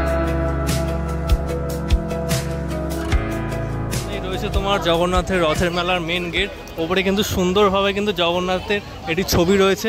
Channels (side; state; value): both; identical; correlation 1.00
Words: তোমার জগন্নাথের রথের মেলার মেন গেট, ওপরে কিন্তু সুন্দরভাবে কিন্তু জগন্নাথের এটি ছবি